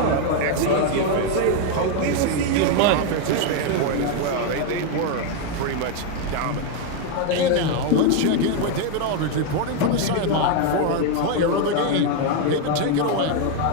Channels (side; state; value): both; different; correlation 0.01